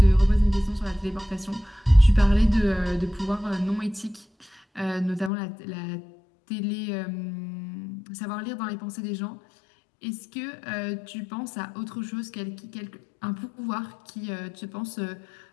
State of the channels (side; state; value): right; drops out; at 5.3 s